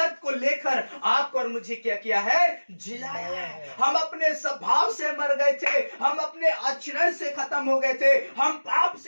को लेकर आपको और मुझे क्या किया है? जिलाया है। हम अपने स्वभाव से मर गए थे, हम अपने आचरण से खत्म हो गए थे, हम पाप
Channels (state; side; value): inverted; both; correlation -1.00